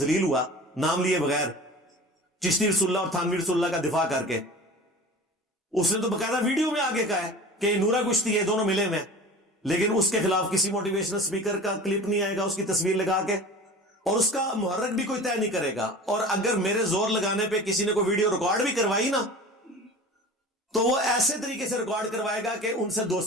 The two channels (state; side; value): normal; both; correlation 0.38